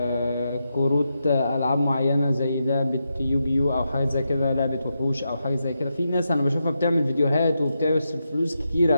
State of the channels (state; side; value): inverted; both; correlation -0.86